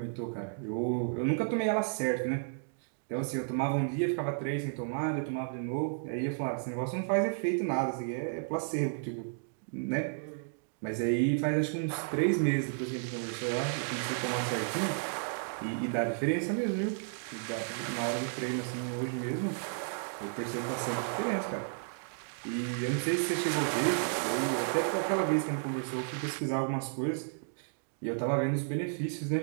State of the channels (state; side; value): silent; left; digital silence